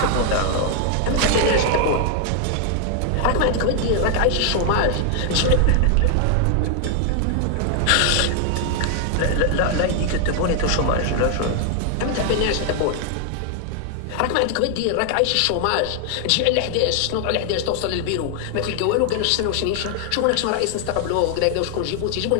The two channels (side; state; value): both; different; correlation 0.00